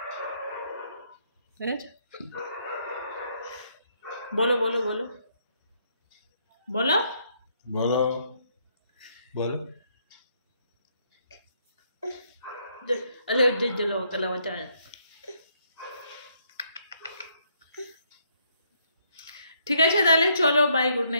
বলো বলো বলো বলো বলো বলো। ঠিক আছে তাহলে চলো বাই, গুড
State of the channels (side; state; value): both; inverted; correlation -0.71